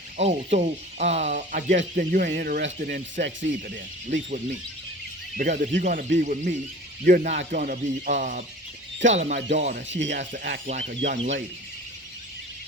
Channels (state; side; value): normal; both; correlation 0.41